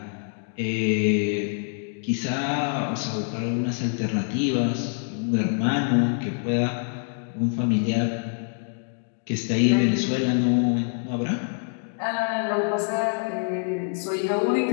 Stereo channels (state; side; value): silent; right; 61 dB below the other